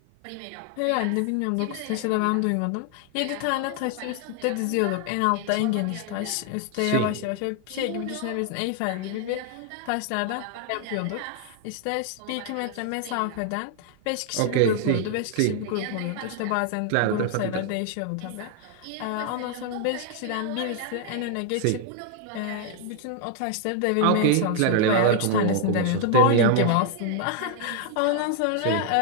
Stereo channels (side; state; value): both; different; correlation 0.00